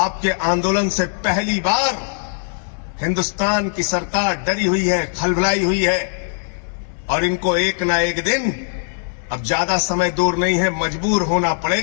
आंदोलन से पहली बार हिंदुस्तान की सरकार डरी हुई है, खलबलाई हुई है, और इनको एक ना एक दिन, अब ज्यादा समय दूर नहीं है, मजबूर होना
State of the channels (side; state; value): right; silent; 63 dB below the other